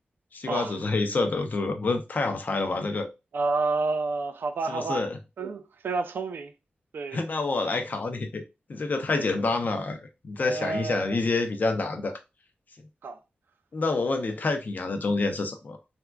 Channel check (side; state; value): both; normal; correlation 0.81